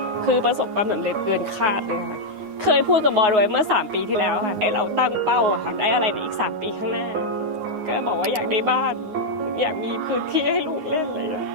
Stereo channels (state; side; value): late; left; 9.5 ms